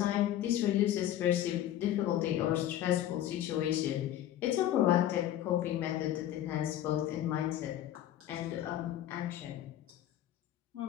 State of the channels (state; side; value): quieter; right; 12.2 dB